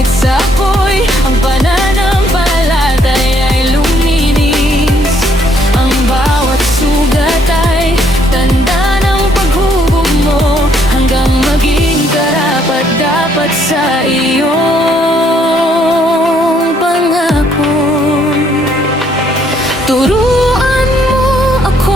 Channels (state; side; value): normal; both; correlation 0.68